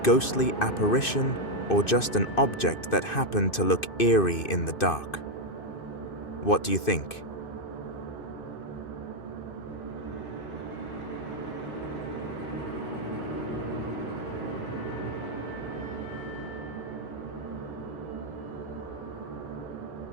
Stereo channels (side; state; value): right; late; 2.6 ms